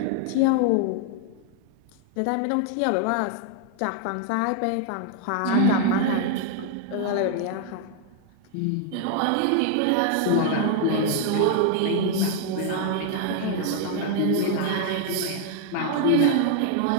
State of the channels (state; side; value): different; both; correlation 0.00